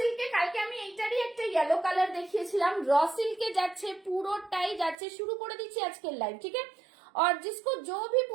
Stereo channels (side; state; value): left; drops out; at 5.0 s